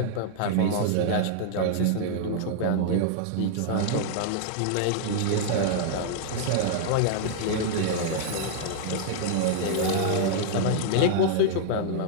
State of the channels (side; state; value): both; different; correlation -0.01